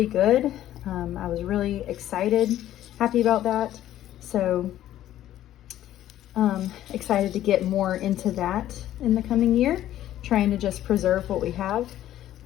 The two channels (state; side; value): quieter; right; 12.8 dB